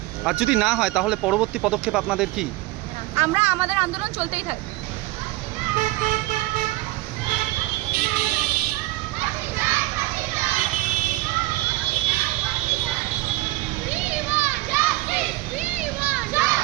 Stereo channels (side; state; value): left; quieter; 19.3 dB